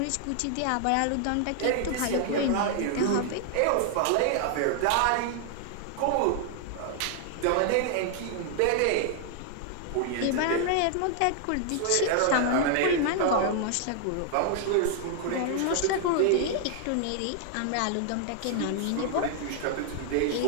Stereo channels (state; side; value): different; both; correlation 0.00